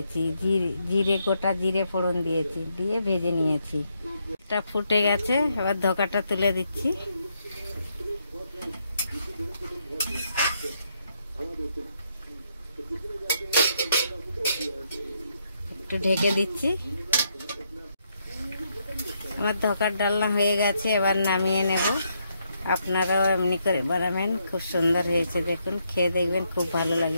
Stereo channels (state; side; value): inverted; both; correlation -0.77